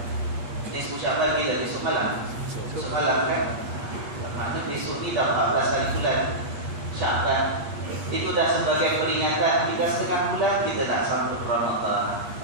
Nisfu Syaban ni dah besok malam. Besok malam kan? Maknanya besok ni dah 14 hari bulan Syaban. Itu dah sebagai peringatan kita setengah bulan kita nak sambut Ramadan.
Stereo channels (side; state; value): left; late; 8.5 ms